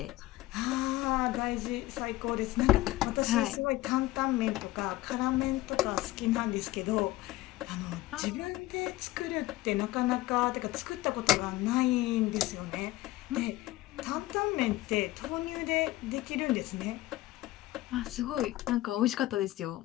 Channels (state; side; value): quieter; right; 17.3 dB